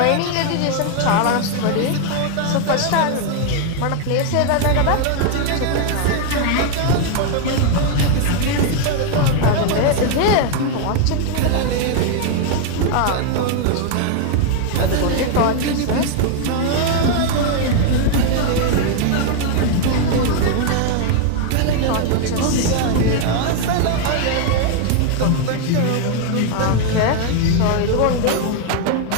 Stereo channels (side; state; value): both; different; correlation 0.00